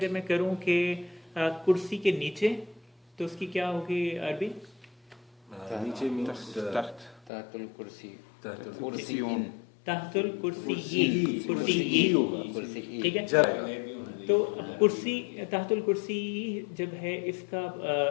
मैं करूं कि कुर्सी के नीचे, तो उसकी क्या होगी अरबी? नीचे मींस तहतुल कुर्सी, तहतुल कुर्सी, ठीक है। तो कुर्सी, तहतुल कुर्सी जब है इसका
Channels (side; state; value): right; drops out; at 7.3 s